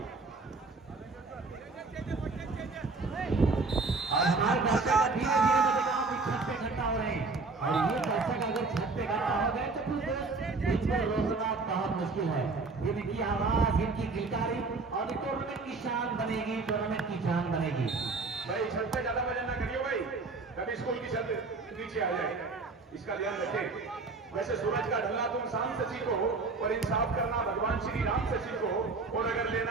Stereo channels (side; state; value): left; quieter; 3.9 dB